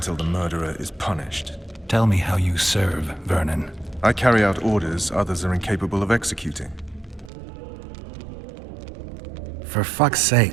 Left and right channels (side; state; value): left; drops out; at 7.3 s